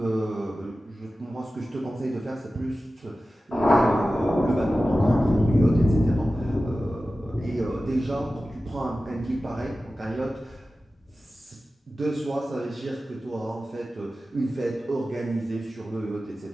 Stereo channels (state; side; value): normal; both; correlation 0.95